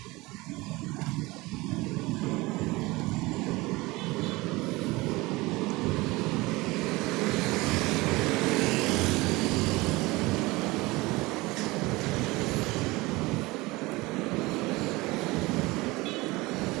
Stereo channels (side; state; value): left; quieter; 21.8 dB